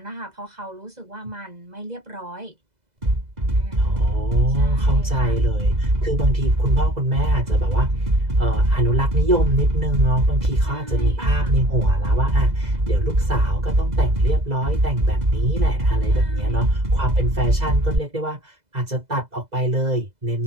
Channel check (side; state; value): left; late; 2.0 ms